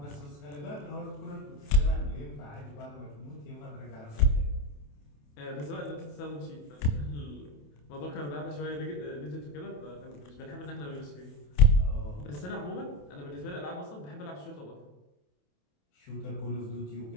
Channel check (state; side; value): late; right; 28 ms